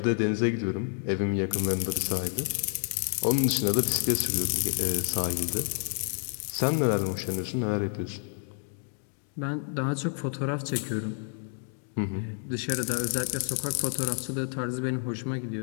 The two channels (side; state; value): right; silent; 58 dB below the other